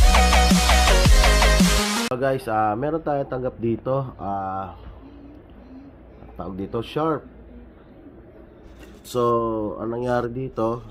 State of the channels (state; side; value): identical; both; correlation 1.00